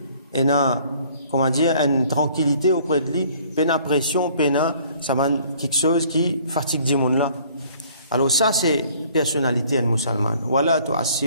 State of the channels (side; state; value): both; inverted; correlation -0.57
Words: il y a, comment dire, une tranquillité auprès de lui, peine à pression, peine à, ça va quelque chose qui fatigue du monde là. Alors ça, c'est personnalité en musulman. Voilà, tu